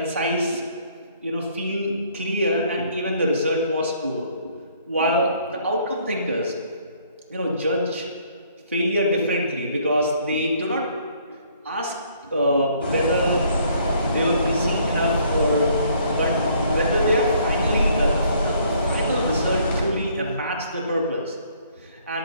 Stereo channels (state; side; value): inverted; both; correlation -0.63